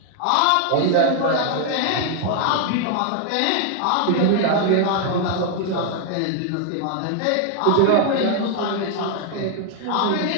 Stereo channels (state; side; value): different; both; correlation 0.00